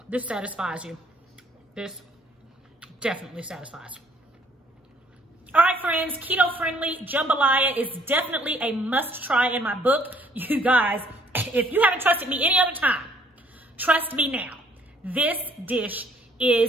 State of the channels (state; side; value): normal; both; correlation 0.63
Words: this satisfies you. This definitely satisfies. All right, friends, keto-friendly jambalaya is definitely a must-try in my book. You guys, if you haven't trusted me any other time, trust me now. This dish